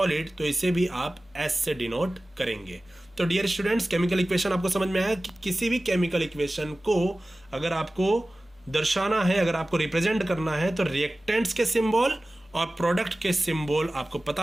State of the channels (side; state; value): both; normal; correlation 0.97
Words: तो इसे भी आप S से डिनोट करेंगे। तो डियर स्टूडेंट्स, केमिकल इक्वेशन आपको समझ में आया कि किसी भी केमिकल इक्वेशन को अगर आपको दर्शाना है, अगर आपको रिप्रेजेंट करना है, तो रिएक्टेंट्स के सिंबल और प्रोडक्ट के सिंबल आपको पता